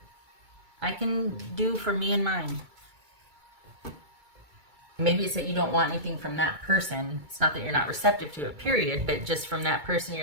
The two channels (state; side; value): late; left; 2.2 ms